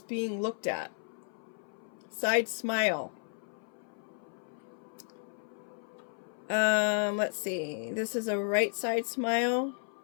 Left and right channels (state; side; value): silent; right; 55 dB below the other